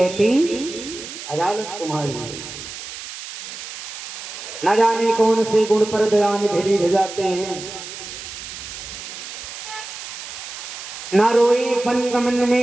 अदालत तुम्हारी। न जाने कौन से गुण पर दया निधि जाते हैं, न रोए बनगमन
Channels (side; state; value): right; noise; hiss, 10 dB below the sound